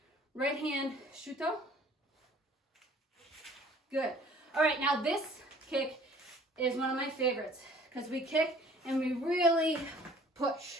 right hand shuto. Good. All right, now this kick is one of my favorites because we kick and we really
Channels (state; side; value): normal; both; correlation 0.53